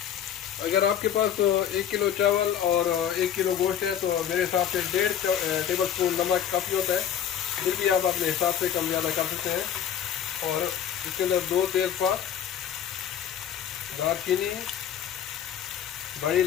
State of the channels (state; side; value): quieter; right; 9.3 dB